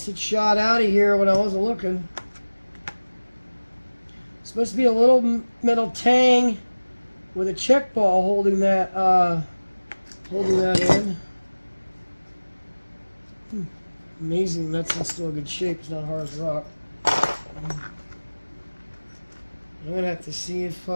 it shot out of here when I wasn't looking. Supposed to be a little metal tang with a check ball holding that in. Amazing, that's in still good shape. It's not hard as rock. I'm gonna have to see if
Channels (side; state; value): both; inverted; correlation -1.00